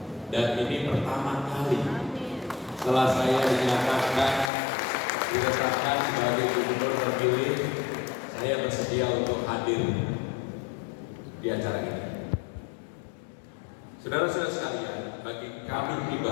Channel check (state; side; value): drops out; right; at 4.5 s